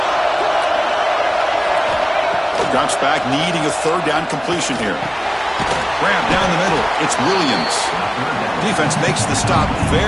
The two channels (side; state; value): both; identical; correlation 1.00